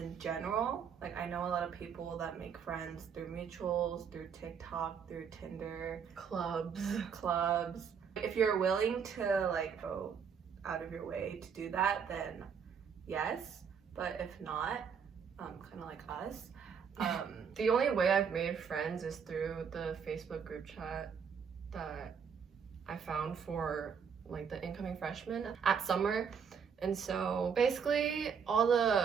general, like I know a lot of people that make friends through mutuals, through TikTok, through Tinder, clubs. If you're willing to like go out of your way to do that, then yes. But if not, kind of like us. The only way I've made friends is through the Facebook group chat that I found for like the incoming freshmen at summer. And so basically all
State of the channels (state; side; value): quieter; left; 6.8 dB